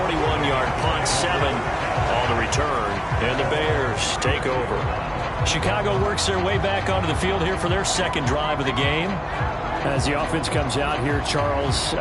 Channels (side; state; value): both; identical; correlation 1.00